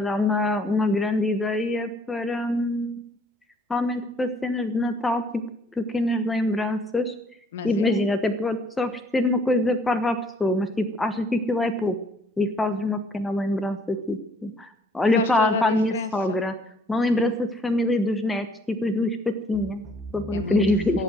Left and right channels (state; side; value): normal; both; correlation 0.62